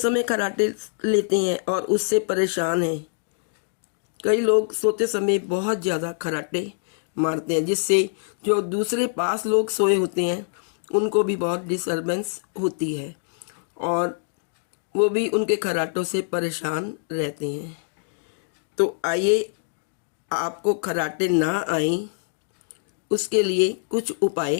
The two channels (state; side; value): silent; right; digital silence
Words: खर्राटे लेते हैं और उससे परेशान हैं। कई लोग सोते समय बहुत ज़्यादा खर्राटे मारते हैं, जिससे जो दूसरे पास लोग सोए होते हैं उनको भी बहुत डिस्टर्बेंस होती है और वो भी उनके खर्राटों से परेशान रहते हैं। तो आइए, आपको खर्राटे ना आए उसके लिए कुछ